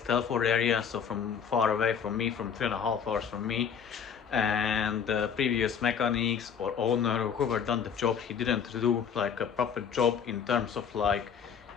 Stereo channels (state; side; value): quieter; right; 7.4 dB